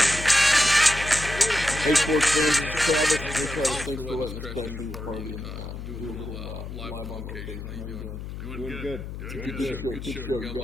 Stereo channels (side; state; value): left; noise; hum, 9 dB below the sound